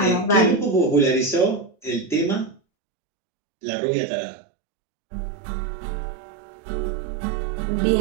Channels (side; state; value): left; drops out; at 2.6 s